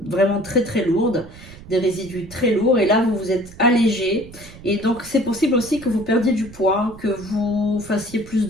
très très lourdes, des résidus très lourds, et là vous vous êtes allégé, et donc c'est possible aussi que vous perdiez du poids, que vous fassiez plus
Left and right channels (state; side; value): noise; right; rumble, 18 dB below the sound